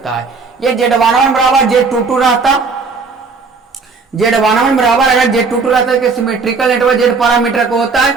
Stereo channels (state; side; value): quieter; left; 4.6 dB